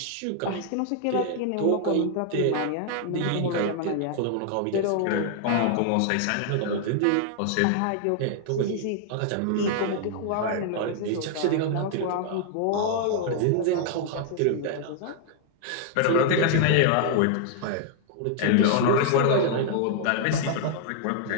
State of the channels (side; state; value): both; different; correlation 0.00